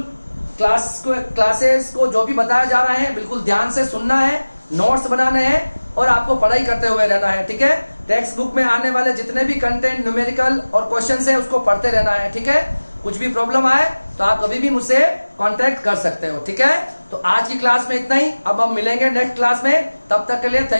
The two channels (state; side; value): inverted; both; correlation -1.00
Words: क्लासेस को जो भी बताया जा रहा है बिल्कुल ध्यान से सुनना है, नोट्स बनाने हैं, और आपको पढ़ाई करते हुए रहना है, ठीक है। टेक्स्ट बुक में आने वाले जितने भी कंटेंट, न्यूमेरिकल और क्वेश्चंस हैं उसको पढ़ते रहना है, ठीक है। कुछ भी प्रॉब्लम आए तो आप कभी भी मुझसे कांटेक्ट कर सकते हो, ठीक है। तो आज की क्लास में इतना ही, अब हम मिलेंगे नेक्स्ट क्लास में, तब तक के लिए